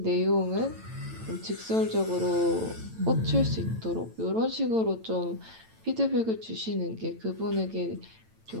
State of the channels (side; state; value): left; late; 9.0 ms